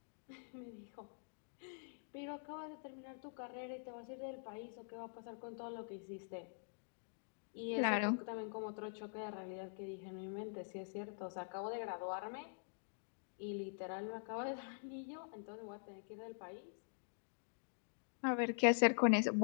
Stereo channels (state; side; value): silent; right; digital silence